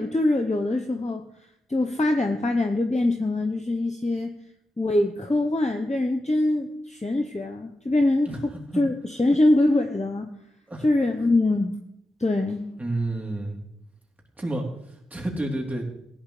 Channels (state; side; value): normal; both; correlation 0.91